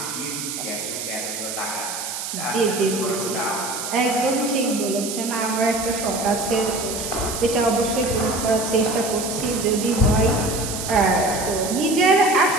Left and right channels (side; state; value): right; noise; hiss, 6 dB below the sound